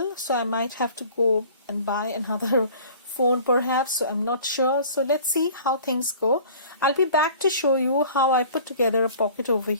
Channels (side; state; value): both; inverted; correlation -0.47